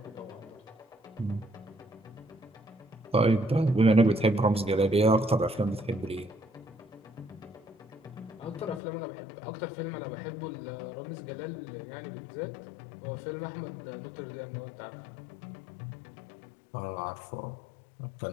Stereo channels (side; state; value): right; drops out; at 8.8 s